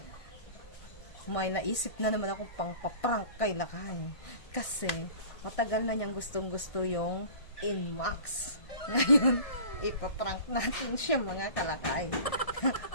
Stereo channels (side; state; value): right; late; 1.6 ms